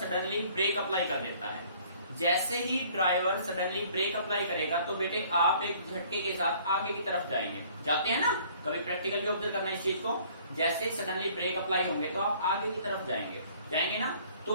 ब्रेक अप्लाई कर देता है। जैसे ही ड्राइवर सडनली ब्रेक अप्लाई करेगा तो बेटे आप एक झटके के साथ आगे की तरफ जाएंगे, जाते हैं ना, कभी प्रैक्टिकली ऑब्जर्व करना इस चीज को। जैसे सडनली ब्रेक अप्लाई होंगे तो आप आगे की तरफ जाएंगे, जाएंगे ना।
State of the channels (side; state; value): both; inverted; correlation -0.56